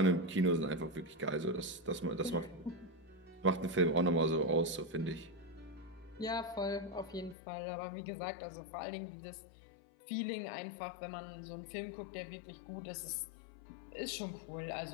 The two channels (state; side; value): drops out; right; at 7.4 s